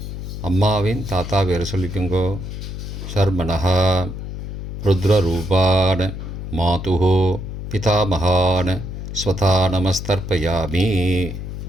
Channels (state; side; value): noise; left; hum, 7 dB below the sound